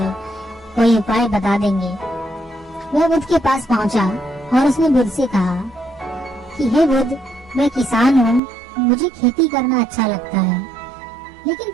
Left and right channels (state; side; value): drops out; left; at 8.4 s